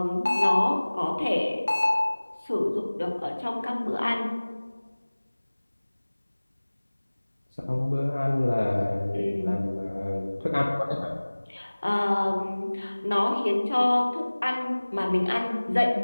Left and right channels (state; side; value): inverted; both; correlation -1.00